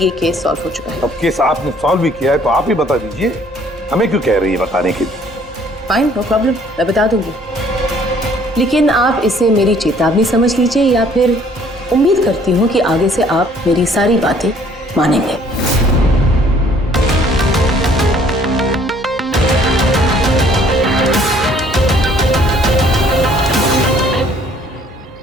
केस सॉल्व हो चुका है। अब केस आपने सॉल्व भी किया है तो आप ही बता दीजिए, हमें क्यों कह रही है बताने के लिए? फाइन, नो प्रॉब्लम, मैं बता दूंगी। लेकिन आप इसे मेरी चेतावनी समझ लीजिए, या फिर उम्मीद करती हूँ कि आगे से आप मेरी सारी बातें मानेंगे।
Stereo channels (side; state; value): both; normal; correlation 0.59